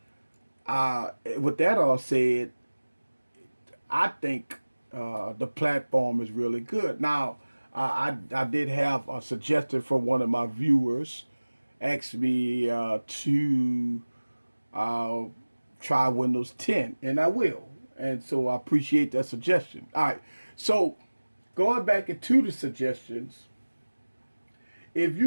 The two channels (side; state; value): both; inverted; correlation -1.00